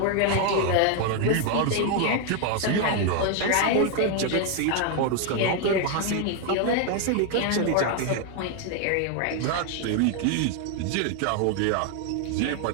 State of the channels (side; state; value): both; different; correlation 0.01